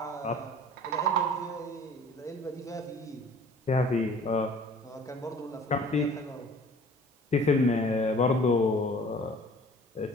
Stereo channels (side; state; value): both; normal; correlation 0.49